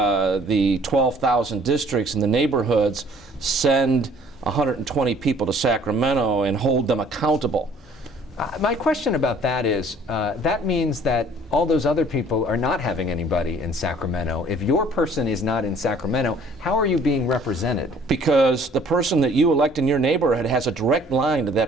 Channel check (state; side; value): normal; both; correlation 0.55